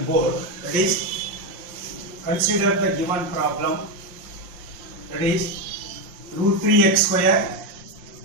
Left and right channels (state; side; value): late; left; 5.6 ms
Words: board. That is, consider the given problem. That is, root 3x square